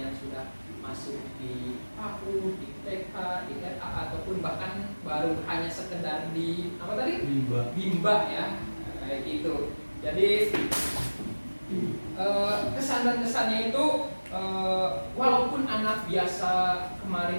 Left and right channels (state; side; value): inverted; both; correlation -1.00